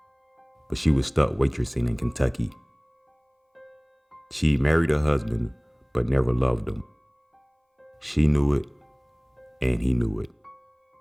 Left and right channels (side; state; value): both; identical; correlation 1.00